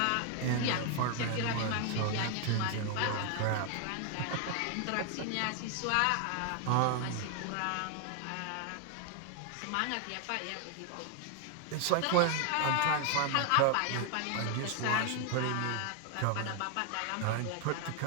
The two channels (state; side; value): different; both; correlation 0.00